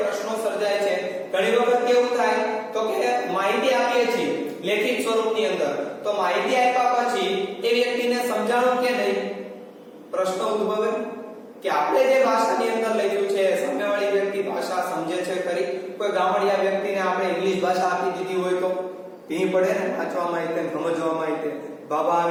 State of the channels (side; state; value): both; identical; correlation 1.00